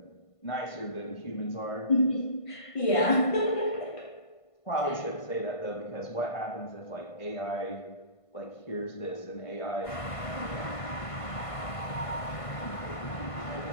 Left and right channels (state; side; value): late; right; 1.5 ms